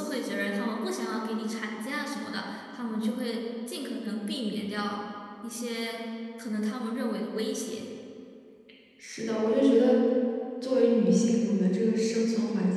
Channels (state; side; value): identical; both; correlation 1.00